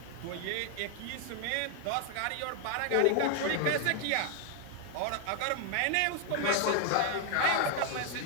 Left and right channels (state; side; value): different; both; correlation 0.00